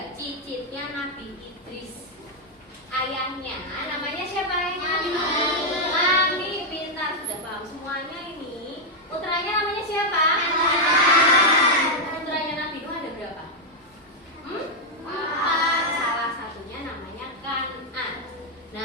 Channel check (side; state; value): both; normal; correlation -0.01